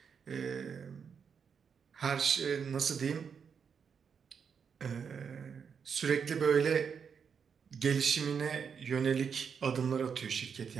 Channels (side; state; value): left; quieter; 6.6 dB